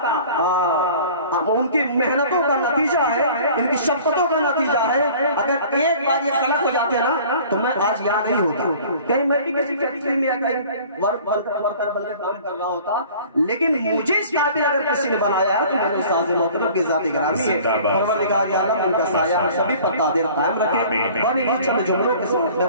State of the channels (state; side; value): inverted; both; correlation -0.47